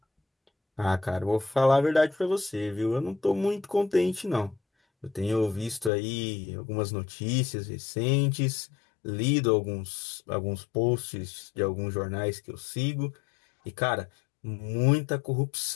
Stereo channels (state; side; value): drops out; right; at 5.9 s